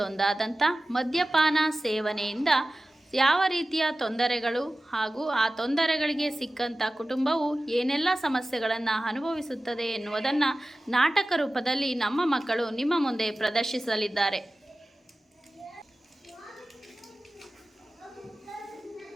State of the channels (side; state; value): both; normal; correlation 0.96